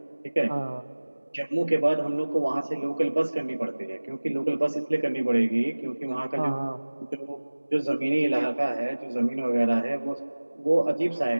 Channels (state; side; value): inverted; both; correlation -1.00